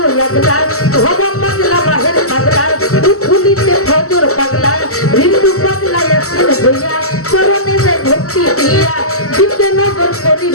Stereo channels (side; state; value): right; late; 0.64 ms